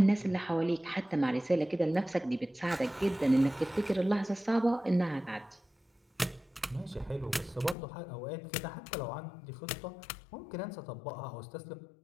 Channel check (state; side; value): drops out; right; at 7.8 s